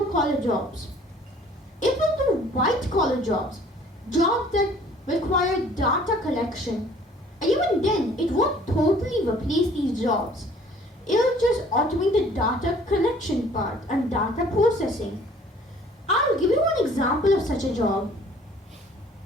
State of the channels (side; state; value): both; normal; correlation 0.54